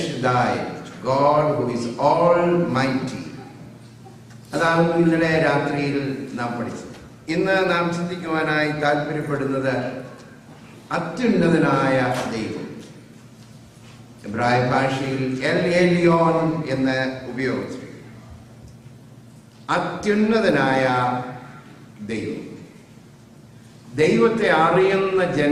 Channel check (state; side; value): identical; both; correlation 1.00